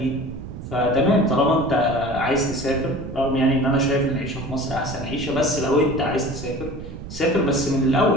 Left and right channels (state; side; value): noise; right; rumble, 10 dB below the sound